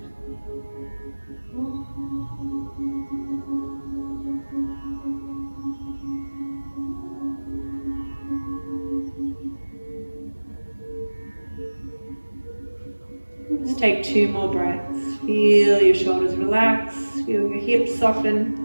Just take 2 more breaths. Feel your shoulders relax, feel your hips soften,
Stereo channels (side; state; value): both; inverted; correlation -1.00